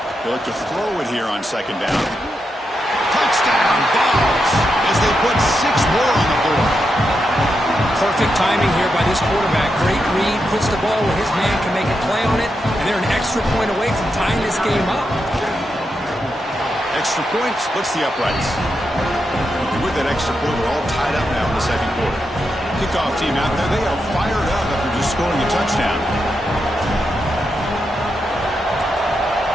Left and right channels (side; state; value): both; normal; correlation 0.85